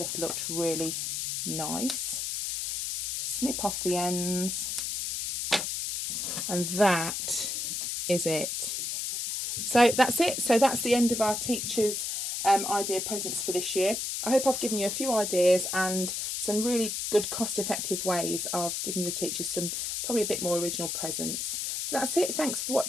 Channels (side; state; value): left; noise; hiss, 2 dB below the sound